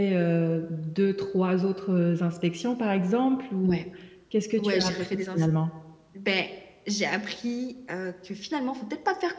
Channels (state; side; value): identical; both; correlation 1.00